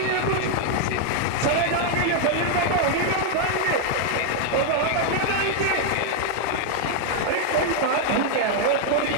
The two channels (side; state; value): both; different; correlation -0.01